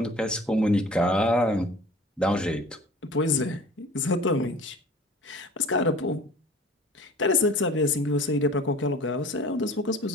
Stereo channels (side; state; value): both; normal; correlation 0.45